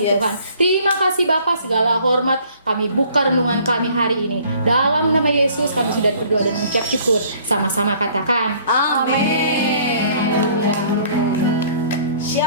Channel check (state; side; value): inverted; both; correlation -0.56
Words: Tuhan. Terima kasih Bapa, segala hormat kami buka renungan kami hari ini. Dalam nama Yesus kami sudah berdoa dan mengucap syukur. Sama-sama katakan amin.